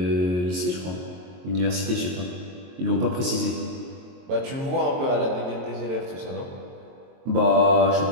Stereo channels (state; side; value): late; left; 22 ms